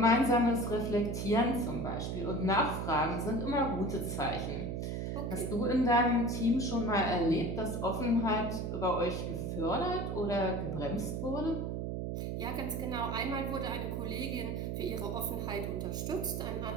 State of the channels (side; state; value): right; noise; hum, 2 dB below the sound